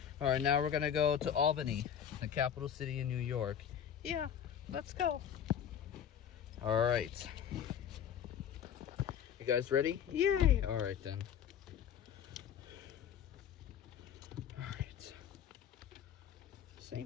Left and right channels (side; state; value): right; quieter; 8.8 dB